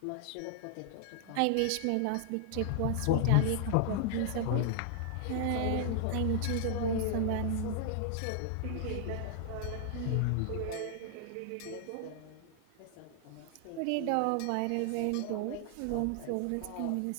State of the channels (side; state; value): both; different; correlation 0.00